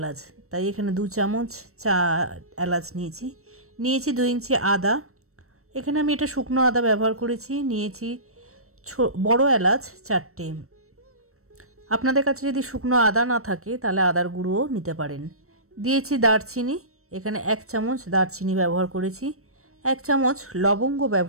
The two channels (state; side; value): late; left; 0.63 ms